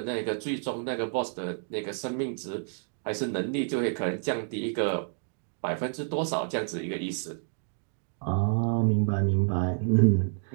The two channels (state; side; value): silent; left; 58 dB below the other